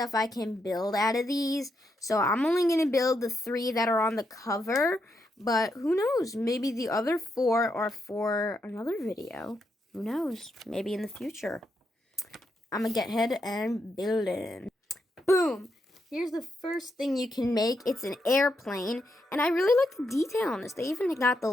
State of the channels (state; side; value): normal; both; correlation 0.81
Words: I can build out of these. So, I'm only going to build the 3 that are on the cover, but who knows? Maybe the other 4 are for another video. Who knows? Maybe in the future. I'm going to get ahead and build it. Boom! Here's the first thing you can make. It's an airplane. And I really like the detail on this. They even got the